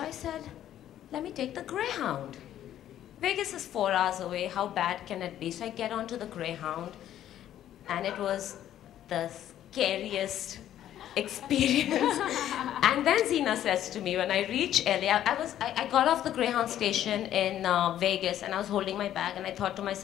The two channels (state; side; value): quieter; right; 11.6 dB